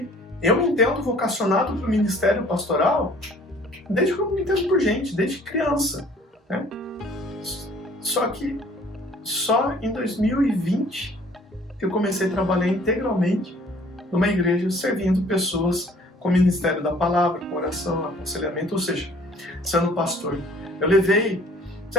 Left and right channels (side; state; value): both; normal; correlation 0.54